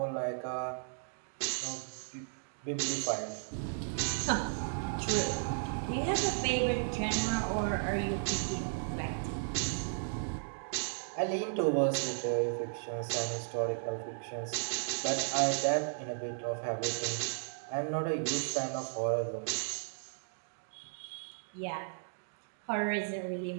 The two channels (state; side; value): silent; left; digital silence